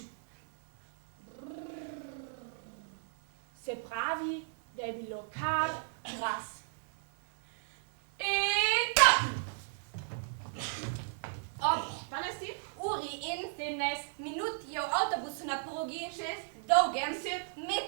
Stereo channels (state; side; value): silent; left; digital silence